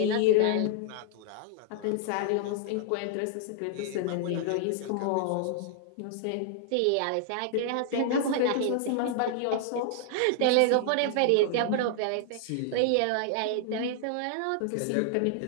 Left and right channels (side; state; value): both; different; correlation 0.00